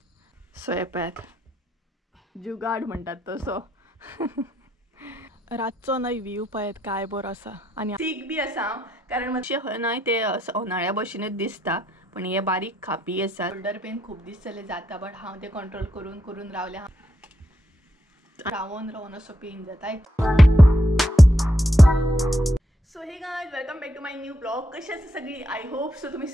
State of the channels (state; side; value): normal; both; correlation 0.79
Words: सो येपात जुगाड म्हणटात तसो रातचो न्हय व्यू पळयत काय बरो आसा आनी सीक बी आसा कारण मातशें न्हय ते उन्हाळ्या भशेनूच दिसता पण हे बारीक खापी आसा शोल्डर पेन खूब दीस जाले जाता बट हांव ते कंट्रोल करून करून रावले रावून रावून असो पेन जाता so hey guys welcome back to my new blog कशी आसा सगळी आय होप सो तुम्ही